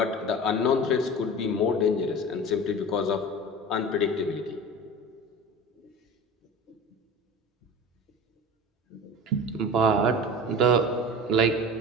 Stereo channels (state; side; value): normal; both; correlation 0.34